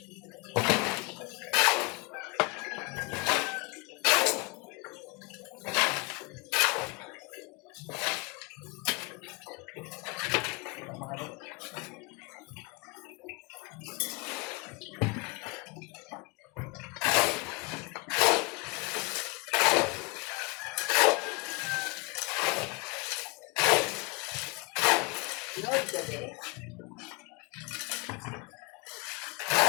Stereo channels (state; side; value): quieter; right; 28.5 dB